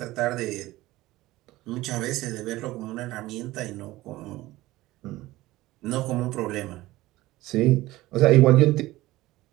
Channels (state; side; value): quieter; left; 17.9 dB